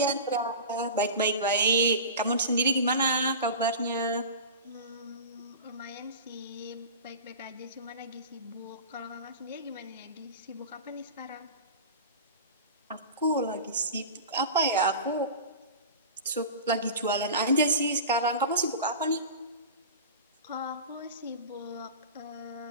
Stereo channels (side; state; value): both; inverted; correlation -0.32